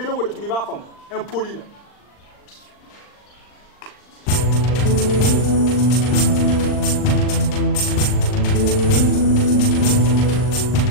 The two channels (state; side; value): late; right; 39 ms